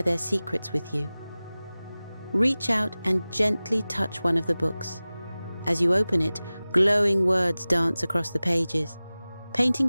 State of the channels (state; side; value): inverted; both; correlation -0.98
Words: their secrets with you. Reach out and gently touch one of the books. As you open it, glowing words dance across the pages, painting